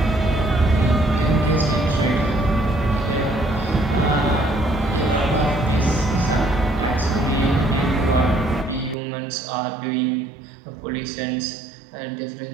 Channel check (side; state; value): left; drops out; at 9.0 s